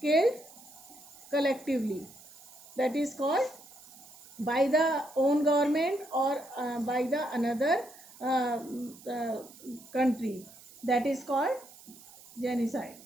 killed collectively. That is called by the own government or by the another country. That is called genocide.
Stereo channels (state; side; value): noise; right; hiss, 20 dB below the sound